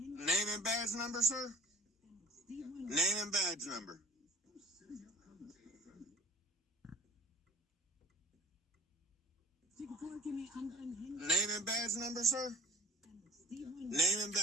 and badge number, sir? Name and badge number. Name and badge number, sir? Name and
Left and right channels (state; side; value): normal; both; correlation 0.45